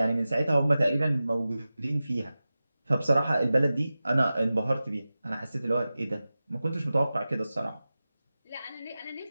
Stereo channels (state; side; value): inverted; both; correlation -0.95